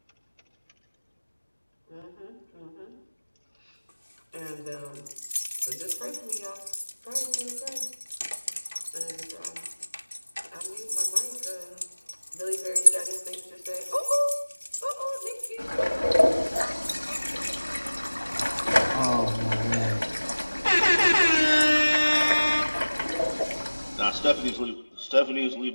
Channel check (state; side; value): inverted; both; correlation -1.00